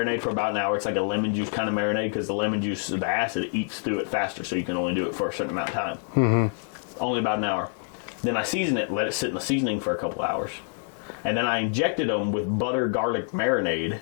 for about an hour. It's like a lemon juice kind of marinade because the lemon juice, the acid eats through it faster, so you can only do it for a certain amount of time. Mm-hmm. Only about an hour. Then I season it, let it sit in the seasoning for a couple hours. And then I injected them with butter garlic marinade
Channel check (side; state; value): right; silent; 57 dB below the other